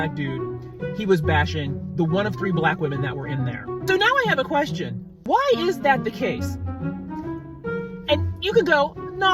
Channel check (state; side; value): identical; both; correlation 1.00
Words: dude, he was bashing the one of 3 black women that were in there. So now I have a question. Why is that the case? And you can go,